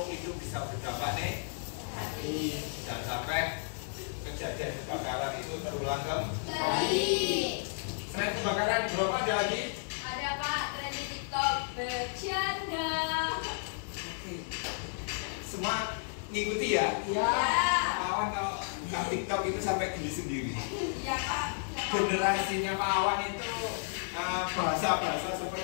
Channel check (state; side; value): silent; right; 56 dB below the other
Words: itu bisa berdampak negatif. Jangan sampai kejadian kebakaran itu terulang kembali. Selain kebakaran di Bromo ada lagi? Ada Pak, tren di TikTok bercanda. Semua ngikuti ya? Iya. Pak Awan kalau buka TikTok itu sampai geli sendiri. Iya Pak. Generasinya Pak Awan itu bahasa-bahasa